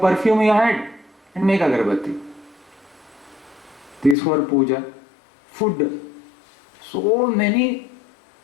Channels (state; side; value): drops out; right; at 4.2 s